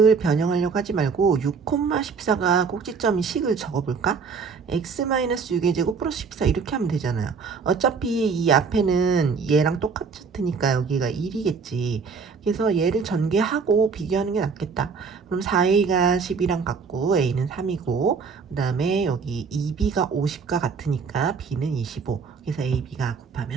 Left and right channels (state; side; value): quieter; left; 5.4 dB